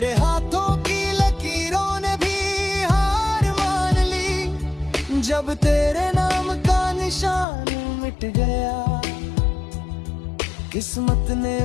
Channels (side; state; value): right; drops out; at 7.5 s